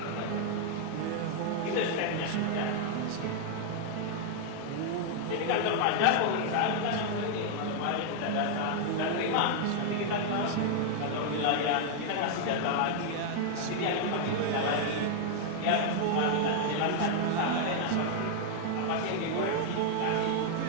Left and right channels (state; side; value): different; both; correlation 0.00